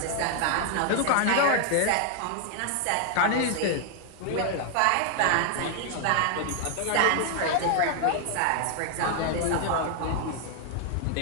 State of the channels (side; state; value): both; different; correlation 0.00